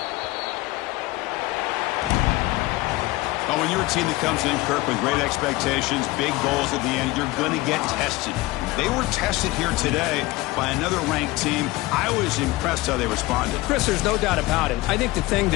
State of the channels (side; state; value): right; quieter; 19.8 dB